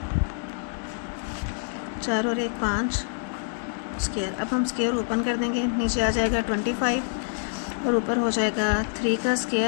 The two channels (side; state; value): right; silent; 61 dB below the other